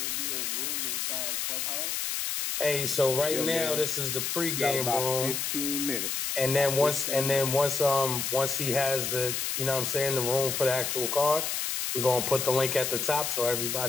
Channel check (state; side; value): noise; left; hiss, 1 dB below the sound